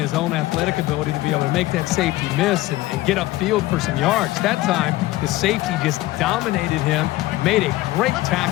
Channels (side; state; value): right; quieter; 17.5 dB